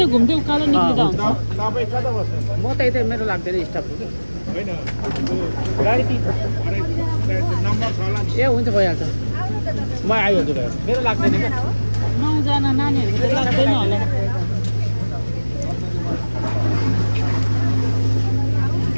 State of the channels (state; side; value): inverted; both; correlation -1.00